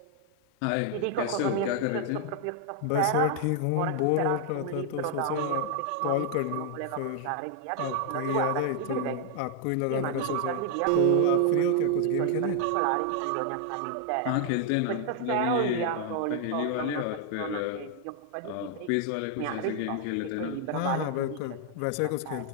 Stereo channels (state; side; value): different; both; correlation 0.00